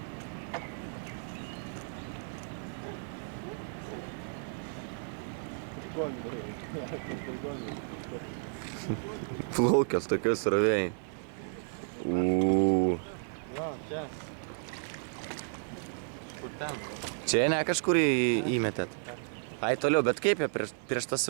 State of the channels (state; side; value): silent; left; 56 dB below the other